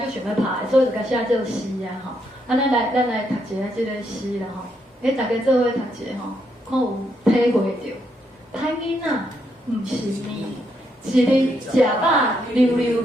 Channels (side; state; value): both; normal; correlation 0.77